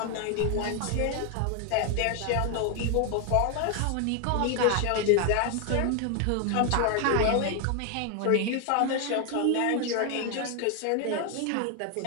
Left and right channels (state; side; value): different; both; correlation 0.01